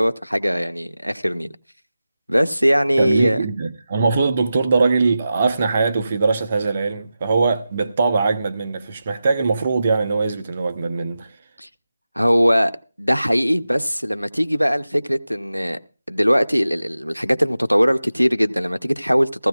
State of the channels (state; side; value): inverted; both; correlation -0.93